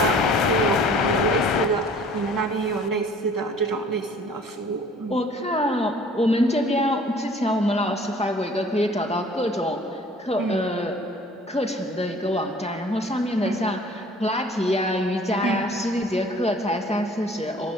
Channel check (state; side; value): normal; both; correlation 0.51